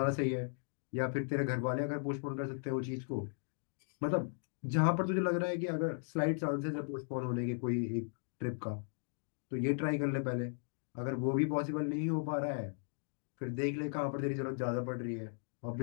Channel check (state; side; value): silent; right; digital silence